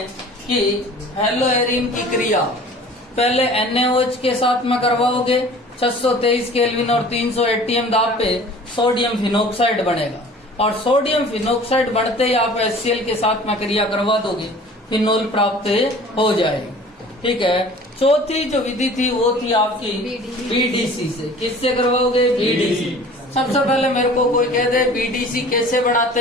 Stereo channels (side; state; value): both; normal; correlation 0.46